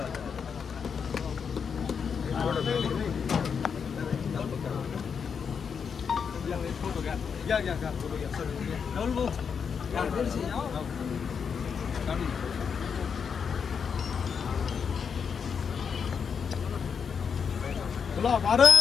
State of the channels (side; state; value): right; quieter; 6.5 dB